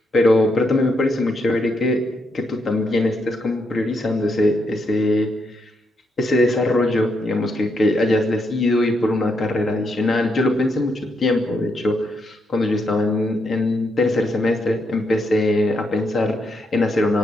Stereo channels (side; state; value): both; normal; correlation 0.79